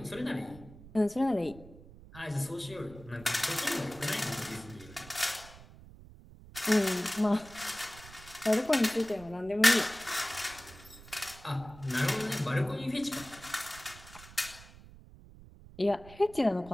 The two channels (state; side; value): noise; right; rumble, 19 dB below the sound